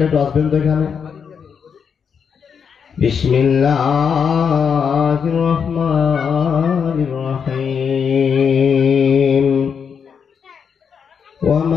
একটু আসবেন তো এখানে। বিসমিল্লাহির রহমানির রহিম ওয়া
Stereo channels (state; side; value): quieter; right; 6.8 dB